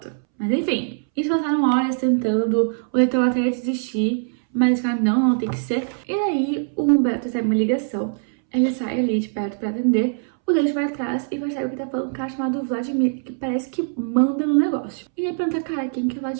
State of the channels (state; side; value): silent; left; 64 dB below the other